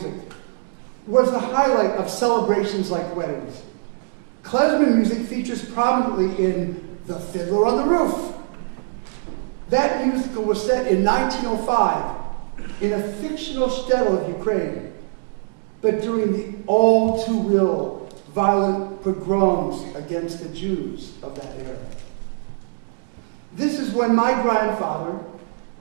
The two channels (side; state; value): left; silent; digital silence